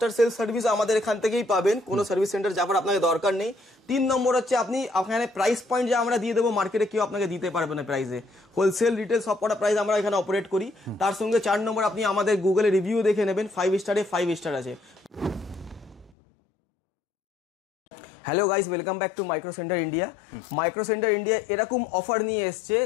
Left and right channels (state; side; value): drops out; right; at 16.1 s